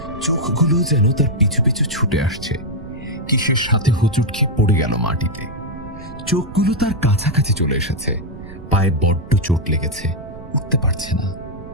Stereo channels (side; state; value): right; noise; rumble, 14 dB below the sound